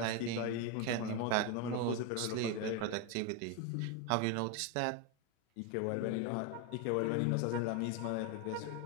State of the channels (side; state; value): both; different; correlation 0.02